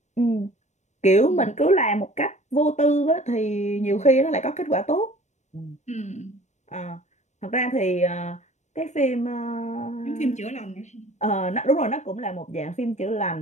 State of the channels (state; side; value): late; right; 0.34 ms